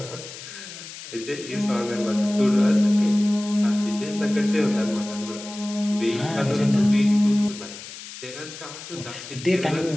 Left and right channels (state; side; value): noise; left; hiss, 13 dB below the sound